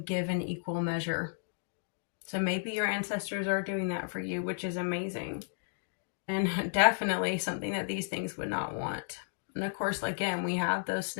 give an equal measure. So maybe your ancestors are doing that for you, which is amazing. And definitely something that these things would not want. And of course, again, we have those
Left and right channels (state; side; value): silent; right; digital silence